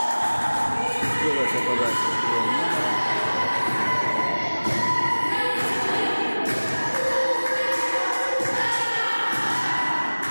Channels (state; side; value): inverted; both; correlation -1.00